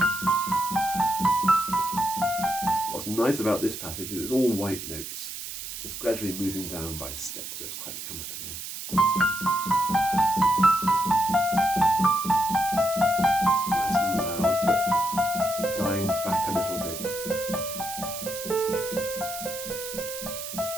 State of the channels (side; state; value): right; noise; hiss, 8 dB below the sound